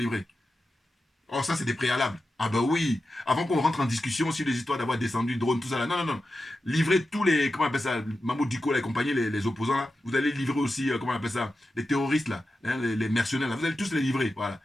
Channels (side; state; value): both; normal; correlation 0.91